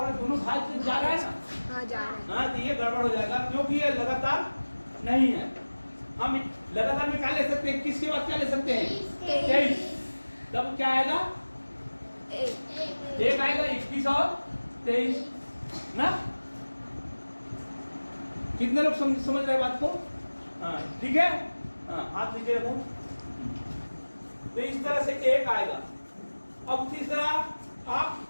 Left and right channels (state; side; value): inverted; both; correlation -1.00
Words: रहा है, दोनों भाग जा रहा है ना। हाँ जा रहा है। हाँ, तो ये गड़बड़ हो जाएगा क्योंकि ये लगातार नहीं है। हम लगातार में क्या ले सकते हैं? 21 के बाद क्या ले सकते हैं? 23। तब क्या आएगा? एक आएगा। 21 और 23 ना। कितने लोग समझ रहे बात को? हाँ ठीक है। हाँ, हाथ नीचे रखो। तो इस तरह से एक आएगा। अब तीसरा, आप